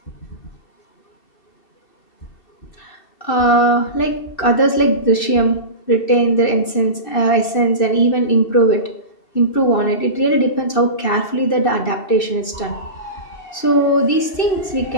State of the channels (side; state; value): right; late; 2.6 ms